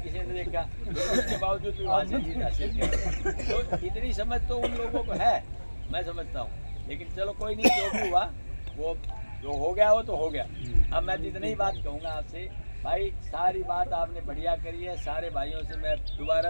किसी ने देखा, उसके बावजूद भी वहाँ से जीत हासिल किया। तो इतनी समझ तो उन लोगों को है, मैं समझता हूँ। लेकिन चलो कोई नहीं, जो भी हुआ वो जो हो गया वो तो हो गया। अब मैं इतनी ही बात कहूँगा आपसे भाई, सारी बात आपने बढ़िया करी है। सारे भाइयों से मैं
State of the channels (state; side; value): inverted; both; correlation -1.00